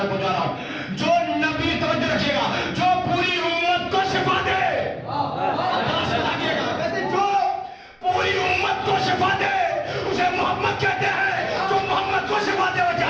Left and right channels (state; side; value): identical; both; correlation 1.00